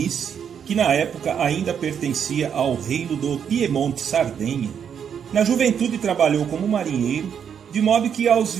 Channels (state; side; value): quieter; left; 7.9 dB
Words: que na época ainda pertencia ao reino do Piemonte-Sardenha, na juventude trabalhou como marinheiro, de modo que aos